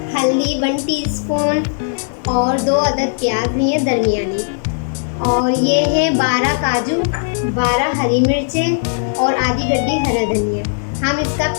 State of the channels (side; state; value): right; silent; 56 dB below the other